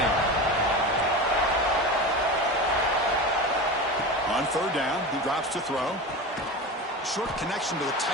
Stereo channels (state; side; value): normal; both; correlation 0.27